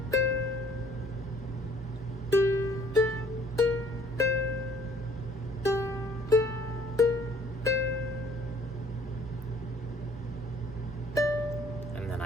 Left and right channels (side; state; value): both; normal; correlation 0.57